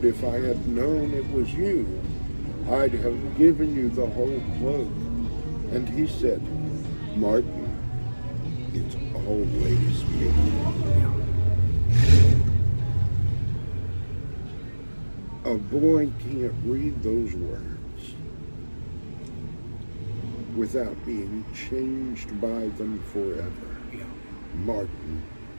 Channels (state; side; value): inverted; both; correlation -1.00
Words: if I had known it was you, I'd have given you the whole cloak." And he said, "Martin, it's always me." A boy can't read those words without being changed by them forever. Martin,